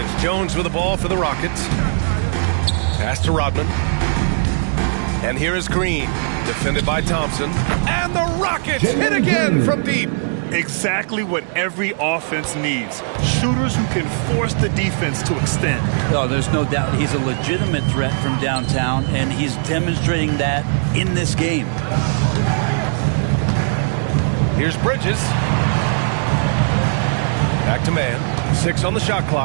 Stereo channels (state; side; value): silent; left; digital silence